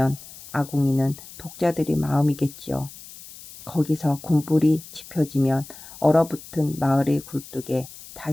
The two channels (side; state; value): left; noise; hiss, 17 dB below the sound